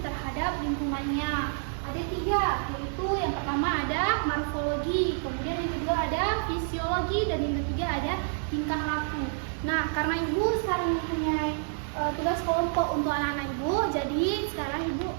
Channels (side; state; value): left; silent; 59 dB below the other